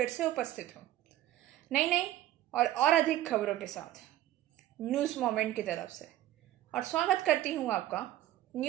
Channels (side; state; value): left; quieter; 13.9 dB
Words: से उपस्थित हूँ नई और अधिक खबरों के साथ न्यूज़ मोमेंट की तरफ से, और स्वागत करती हूँ आपका